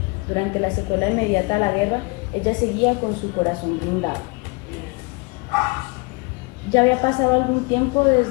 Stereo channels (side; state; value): right; quieter; 29.2 dB